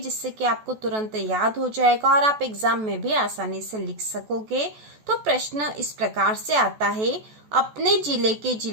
कि आपको तुरंत याद हो जाएगा और आप एग्जाम में भी आसानी से लिख सकोगे। तो प्रश्न इस प्रकार से आता है, अपने जिले के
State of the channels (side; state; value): left; late; 14 ms